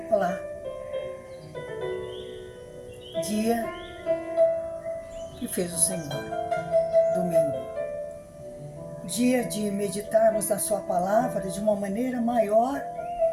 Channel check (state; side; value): identical; both; correlation 1.00